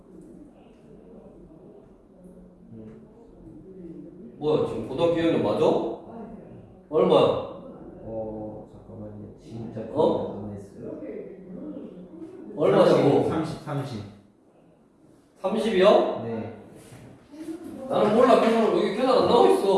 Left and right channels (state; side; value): identical; both; correlation 1.00